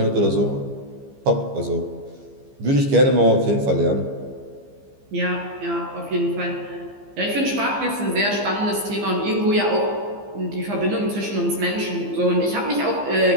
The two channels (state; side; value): late; left; 15 ms